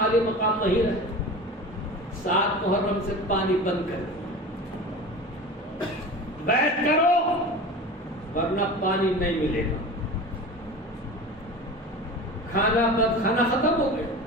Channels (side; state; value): both; normal; correlation 0.33